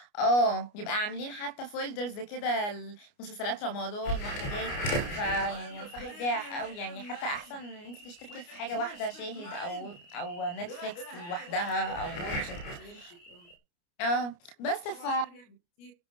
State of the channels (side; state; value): right; late; 29 ms